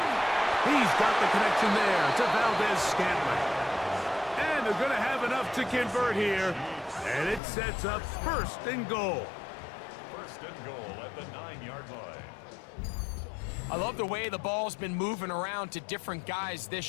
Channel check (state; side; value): drops out; right; at 7.4 s